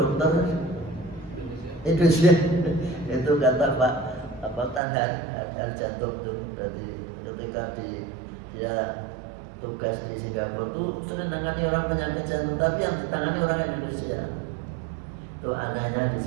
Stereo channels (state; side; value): drops out; left; at 4.8 s